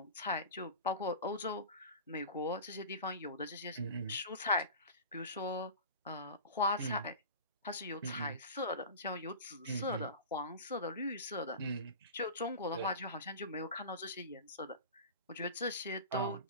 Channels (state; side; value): inverted; both; correlation -0.32